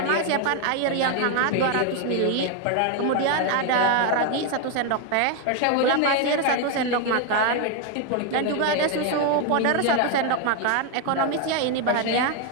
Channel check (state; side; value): different; both; correlation 0.01